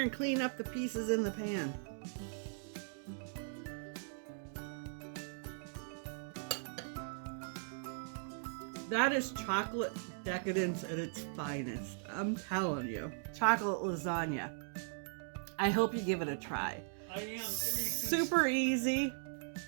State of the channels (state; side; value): silent; left; digital silence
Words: and clean up the pieces in the pan. That is chocolate decadence at its finest. I'm telling you. Chocolate lasagna. I hope you give it a try. I am. Super easy.